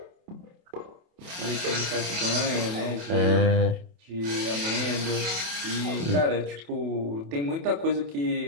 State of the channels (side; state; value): left; late; 28 ms